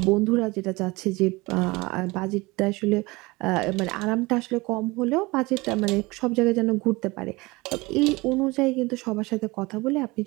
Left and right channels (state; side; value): quieter; left; 23.1 dB